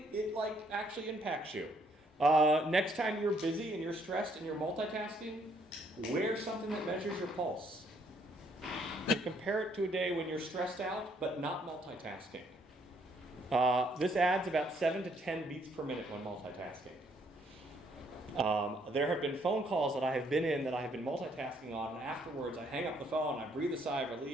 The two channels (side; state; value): both; normal; correlation 0.68